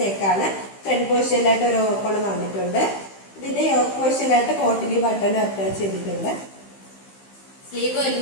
നെക്കാണ്. ഫ്രണ്ട് പോർഷനിലായിട്ട് ഒരു ഓപ്പൺ വന്നിട്ടുണ്ട്. ഇതിന്റെ യോക്ക് പോർഷനിലായിട്ട് കോട്ടിലി ബട്ടൺ അറ്റാച്ച് ചെയ്തിട്ടുണ്ട്. സ്ലീവ്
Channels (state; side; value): late; right; 15 ms